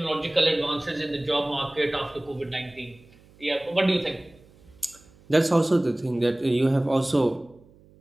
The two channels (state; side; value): noise; right; hum, 27 dB below the sound